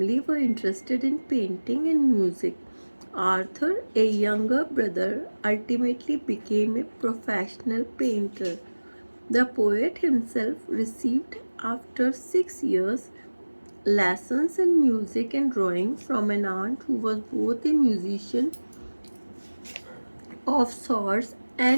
were interested in painting and music. Arthur, a younger brother, ultimately became a professional painter. The poet himself received, after 6 years, lessons in music and drawing from an aunt who was both a musician of sorts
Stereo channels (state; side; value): inverted; both; correlation -1.00